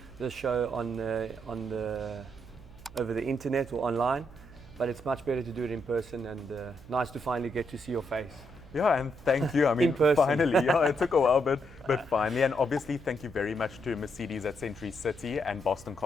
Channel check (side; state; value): right; noise; hum, 20 dB below the sound